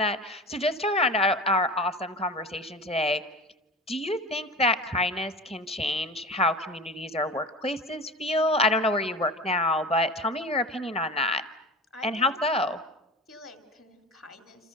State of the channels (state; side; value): normal; both; correlation 0.32